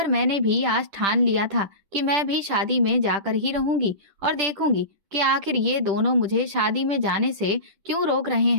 मैंने भी आज ठान लिया था कि मैं भी शादी में जाकर ही रहूंगी और देखूंगी कि आखिर ये दोनों मुझे शादी में जाने से क्यों रोक रहे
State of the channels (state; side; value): late; left; 10 ms